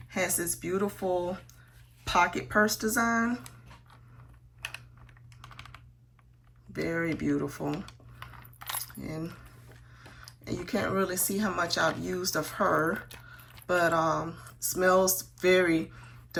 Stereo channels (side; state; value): both; identical; correlation 1.00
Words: Has this beautiful pocket purse design. Very beautiful. And you can't really see how much I've used of her, but smells very